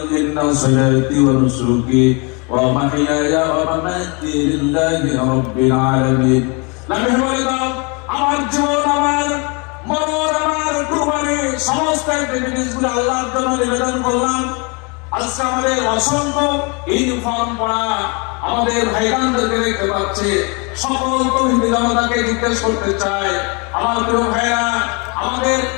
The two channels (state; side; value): quieter; right; 32.0 dB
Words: ইন্না সালাতি ওয়া নুসুকি ওয়া মাহইয়ায়া ওয়া মামাতি লিল্লাহি রাব্বিল আলামিন। নবী বলে দাও, আমার জীবন, আমার মরণ, আমার কুরবানি, সমস্ত জিনিসগুলো আল্লাহর জন্য নিবেদন করলাম। আজকে আমাদের অসংখ্য ইউনিফর্ম পরা আমাদের ভাইরানদেরকে দেখতে পাচ্ছি। সকল তৌহিদি জনতাকে জিজ্ঞেস করতে চাই, আমার প্রিয় ভাইরা, আমাদের